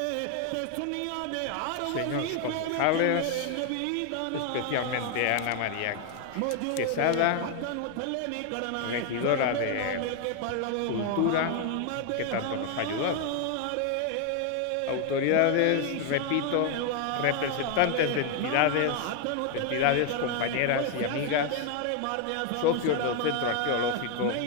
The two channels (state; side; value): different; both; correlation 0.01